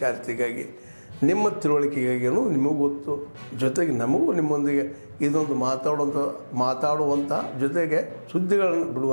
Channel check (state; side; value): inverted; both; correlation -1.00